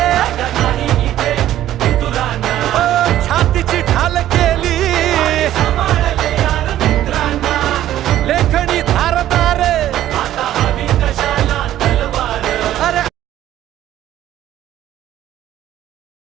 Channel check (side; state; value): left; quieter; 12.8 dB